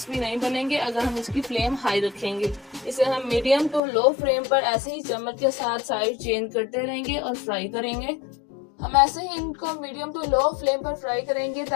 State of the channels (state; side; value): drops out; right; at 3.8 s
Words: नहीं बनेंगे अगर हम इसकी फ्लेम हाई रखेंगे। इसे हम मीडियम टू लो फ्लेम पर ऐसे ही चम्मच के साथ साइड चेंज करते रहेंगे और फ्राई करेंगे। हम ऐसे ही इनको मीडियम टू लो फ्लेम पर फ्राई करेंगे